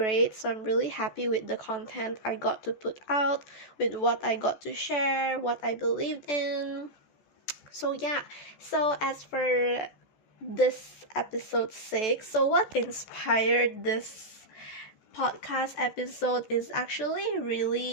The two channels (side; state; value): right; late; 14 ms